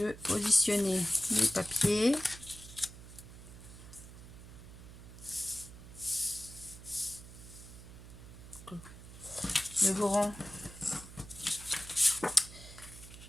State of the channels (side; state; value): right; noise; hum, 15 dB below the sound